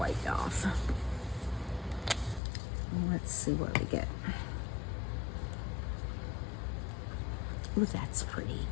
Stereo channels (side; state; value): right; drops out; at 2.4 s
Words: off. Let's see what we get. Ooh, that's pretty.